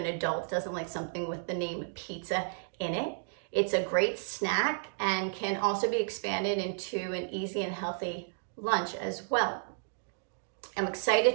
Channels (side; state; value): left; silent; digital silence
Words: adult doesn't like something with the name pizza in it? It's a great snack and can also be expanded into an easy and healthy lunch as well. I'm excited